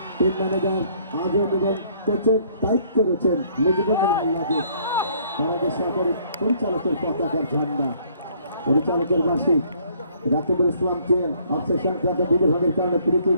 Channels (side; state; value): both; inverted; correlation -0.62